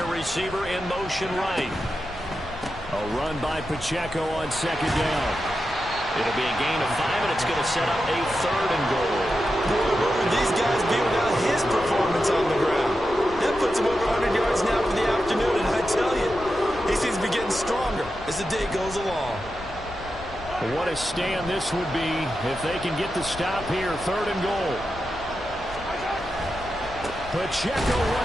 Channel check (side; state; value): left; noise; rumble, 15 dB below the sound